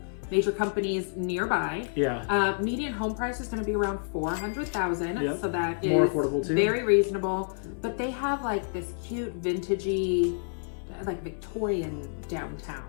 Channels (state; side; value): silent; right; 59 dB below the other